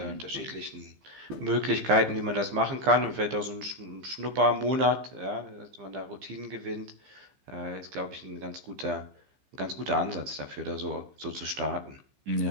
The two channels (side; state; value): left; late; 15 ms